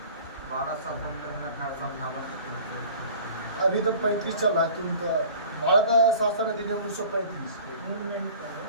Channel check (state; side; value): inverted; both; correlation -0.45